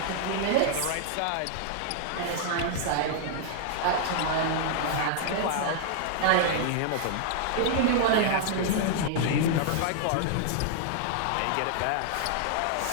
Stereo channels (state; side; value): different; both; correlation -0.01